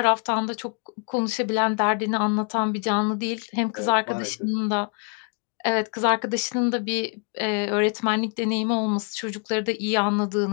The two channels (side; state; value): right; quieter; 37.1 dB